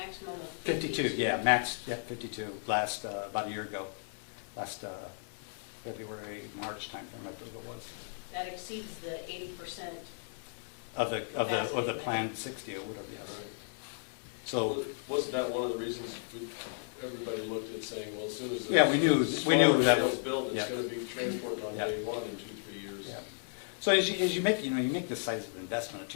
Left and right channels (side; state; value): right; silent; digital silence